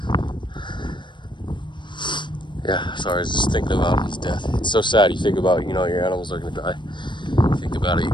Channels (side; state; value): right; late; 0.22 ms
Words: Yeah, sorry, I was just thinking about his death. It's so sad. You think about, your animals are gonna die. You think about it, you